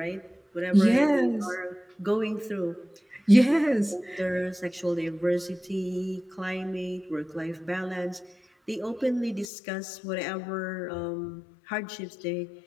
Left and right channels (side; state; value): right; drops out; at 9.5 s